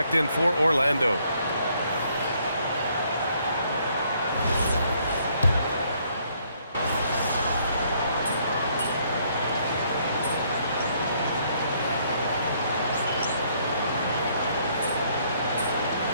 in for Orlando.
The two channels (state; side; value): inverted; both; correlation -0.68